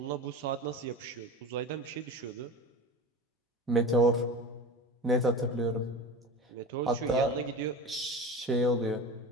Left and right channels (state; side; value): normal; both; correlation 0.32